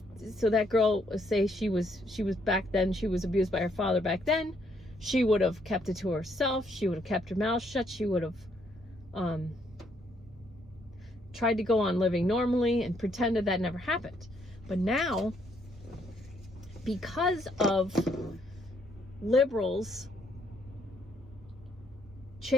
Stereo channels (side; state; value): both; normal; correlation 0.71